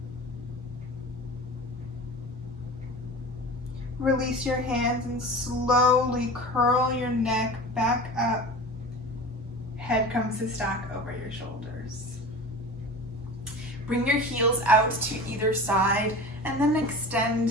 Release your hands and slowly curl your neck back up. Head comes to stack over your shoulders. Bring your heels out to either side and then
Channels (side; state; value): both; normal; correlation 0.34